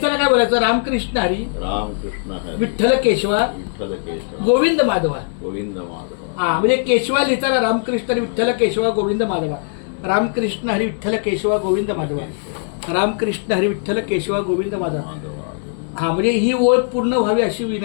काय बोलायचं रामकृष्ण हरी विठ्ठल केशवा गोविंद माधवा. हा म्हणजे केशवा लिहिताना रामकृष्ण हरी विठ्ठल केशवा गोविंद माधवा, रामकृष्ण हरी विठ्ठल केशवा गोविंद माधवा, रामकृष्ण हरी विठ्ठल केशवा गोविंद माधवा. हा म्हणजे ही ओळ पूर्ण व्हावी अशी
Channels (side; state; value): right; silent; 66 dB below the other